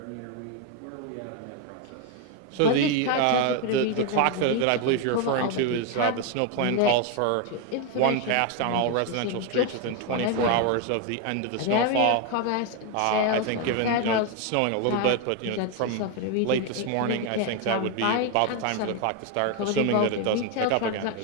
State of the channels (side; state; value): both; different; correlation 0.01